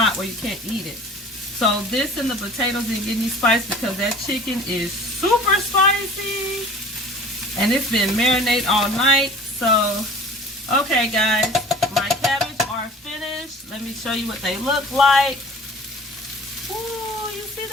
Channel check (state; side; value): normal; both; correlation 0.44